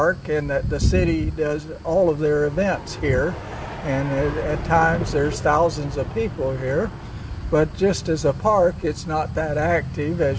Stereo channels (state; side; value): identical; both; correlation 1.00